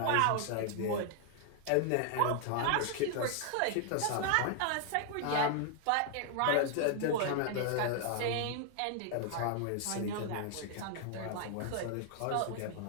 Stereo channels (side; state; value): both; different; correlation 0.00